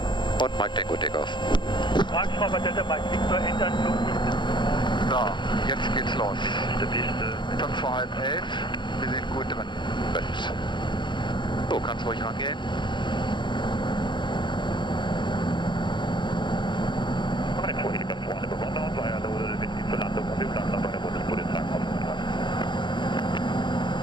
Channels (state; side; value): late; right; 0.23 ms